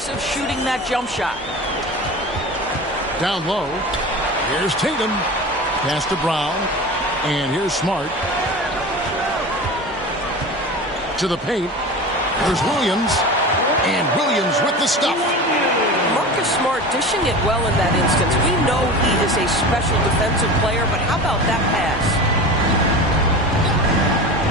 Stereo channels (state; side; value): normal; both; correlation 0.32